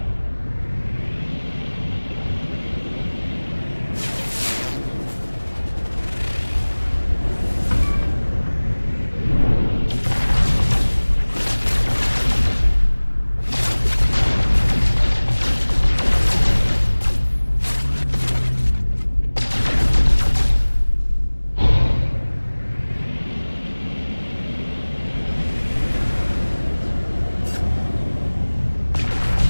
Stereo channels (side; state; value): both; inverted; correlation -1.00